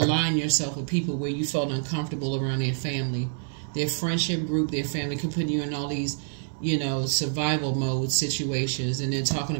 yourself with people where you felt uncomfortable around their family, their friendship group, their family could put you in all these you know, survival mode situations, and then talking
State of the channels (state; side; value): silent; left; digital silence